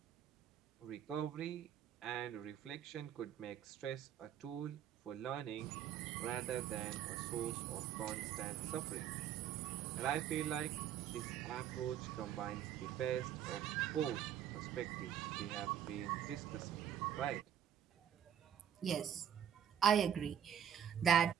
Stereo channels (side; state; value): left; quieter; 9.6 dB